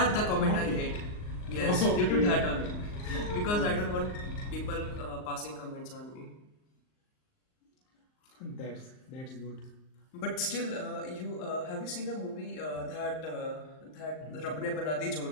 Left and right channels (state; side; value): late; right; 39 ms